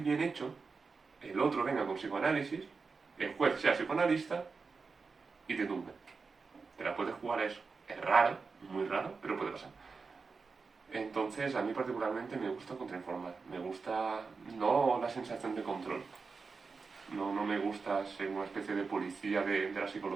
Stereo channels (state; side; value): quieter; left; 4.7 dB